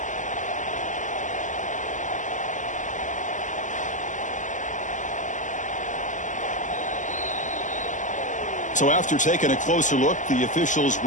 So after taking a closer look, the officials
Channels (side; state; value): right; late; 0.37 ms